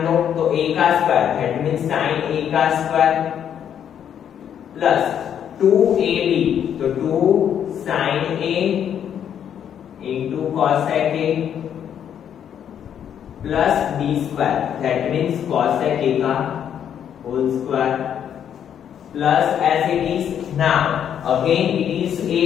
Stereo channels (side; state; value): right; quieter; 9.1 dB